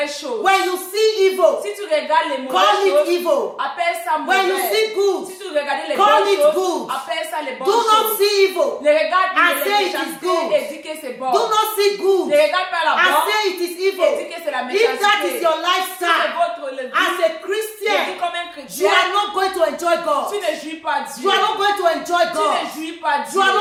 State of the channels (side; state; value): both; identical; correlation 1.00